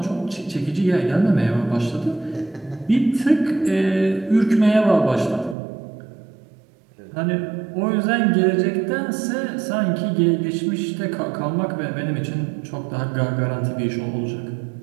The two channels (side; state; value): left; drops out; at 5.6 s